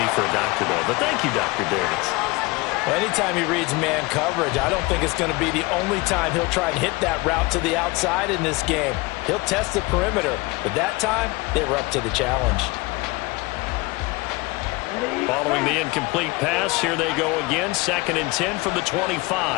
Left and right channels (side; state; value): right; quieter; 23.5 dB